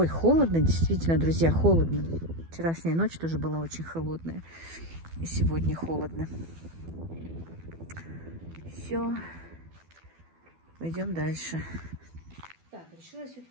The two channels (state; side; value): late; left; 12 ms